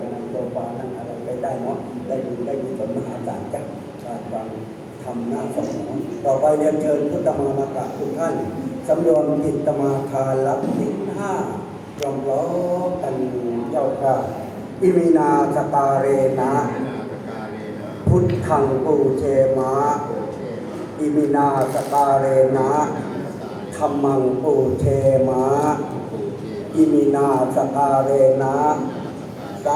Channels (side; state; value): both; identical; correlation 1.00